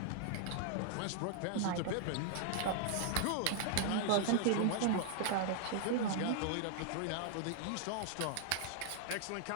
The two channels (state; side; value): different; both; correlation -0.01